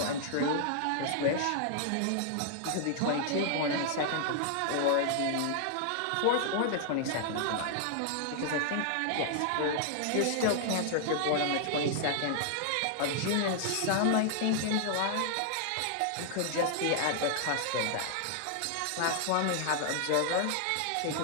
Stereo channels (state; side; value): different; both; correlation -0.01